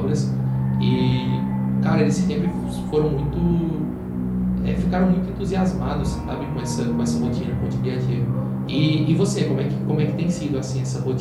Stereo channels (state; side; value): identical; both; correlation 1.00